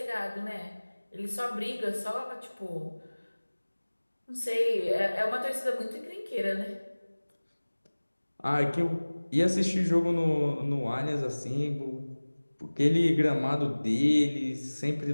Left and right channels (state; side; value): inverted; both; correlation -1.00